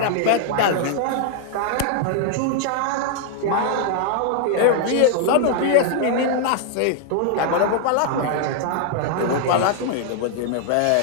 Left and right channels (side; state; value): both; different; correlation 0.00